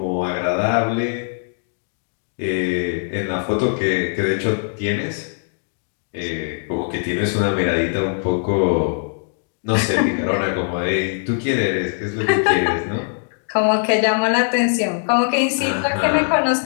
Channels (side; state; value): right; silent; digital silence